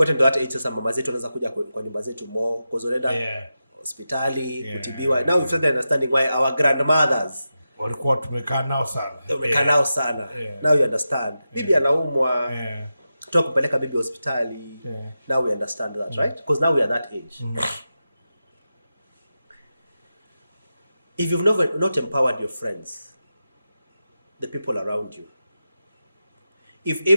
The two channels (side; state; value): both; inverted; correlation -0.91